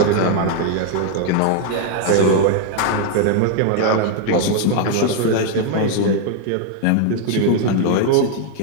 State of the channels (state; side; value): different; both; correlation 0.00